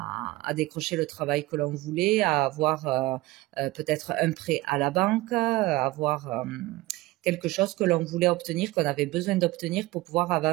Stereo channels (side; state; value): left; quieter; 19.6 dB